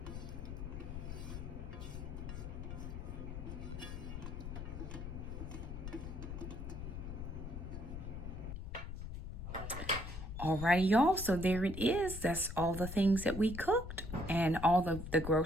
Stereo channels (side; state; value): left; noise; rumble, 7 dB below the sound